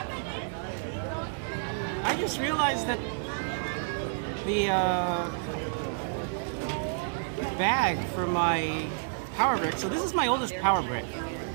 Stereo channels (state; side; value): silent; left; digital silence